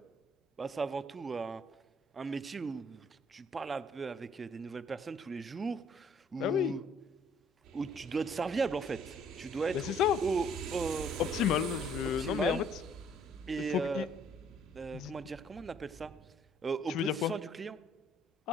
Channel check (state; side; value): normal; both; correlation 0.62